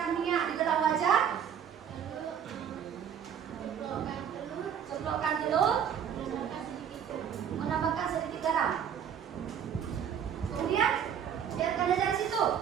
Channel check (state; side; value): quieter; left; 8.5 dB